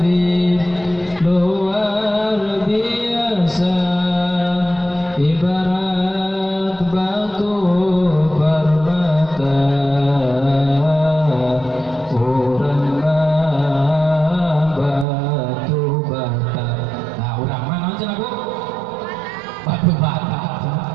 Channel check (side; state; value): left; drops out; at 15.1 s